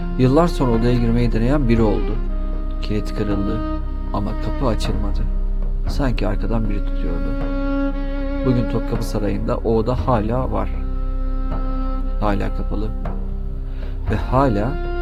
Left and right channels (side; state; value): both; identical; correlation 1.00